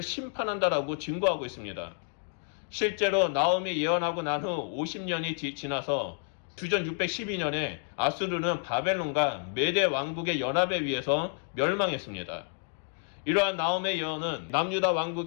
심판한다라고 증거하고 있습니다. 실제로 나움이 예언하고 난 후 50년이 지나서 주전 612년에 아수르는 바벨론과 메대 왕국의 연합에 의해서 멸망했습니다. 이러한 나움의 예언은 남유다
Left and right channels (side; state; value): right; silent; 57 dB below the other